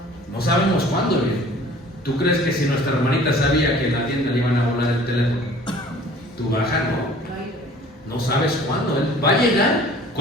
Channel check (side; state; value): both; normal; correlation 0.49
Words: No sabemos cuándo viene. ¿Tú crees que si nuestra hermanita sabía que en la tienda le iban a volar el teléfono, tú bajas? No sabes cuándo. Él va a llegar